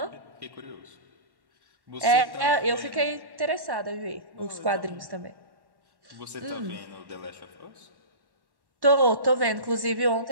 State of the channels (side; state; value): left; late; 1.1 ms